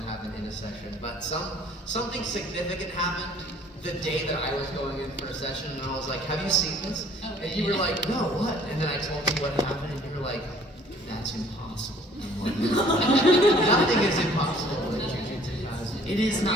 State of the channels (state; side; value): normal; both; correlation 0.56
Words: happened in a session, but something significant happened the day that I was going in for a session, and I was like, have you seen this? And you were like, no, what? And then I told you what happened, and you were like, that's impossible. I'm like, nothing is impossible in Jujutsu Kaisen. it is